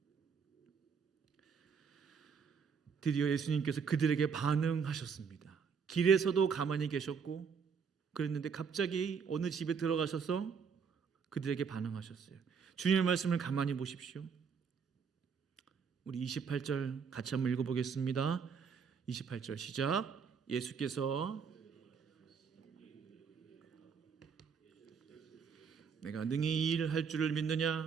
드디어 예수님께서 그들에게 반응하셨습니다. 길에서도 가만히 계셨고 그랬는데 갑자기 어느 집에 들어가셔서 그들에게 반응하셨어요. 주님의 말씀을 가만히 보십시오. 우리 28절 같이 한번 읽어보겠습니다. 28절 시작. 예수께서 내가 능히 이 일을 할 줄을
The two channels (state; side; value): quieter; left; 6.2 dB